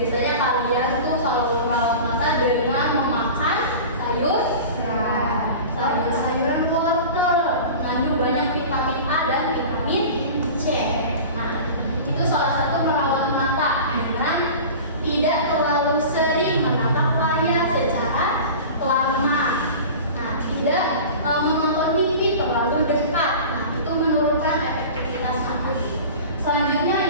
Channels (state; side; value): inverted; both; correlation -0.36